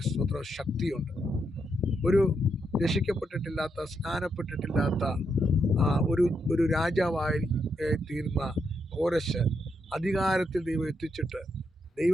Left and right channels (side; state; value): both; normal; correlation 0.80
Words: സ്വത്ര ശക്തിയുണ്ട്. ഒരു രക്ഷിക്കപ്പെട്ടിട്ടില്ലാത്ത, സ്നാനപ്പെട്ടിട്ടില്ലാത്ത ഒരു രാജാവായി തീർന്ന കോരശ് അധികാരത്തിൽ ദൈവം എത്തിച്ചിട്ട്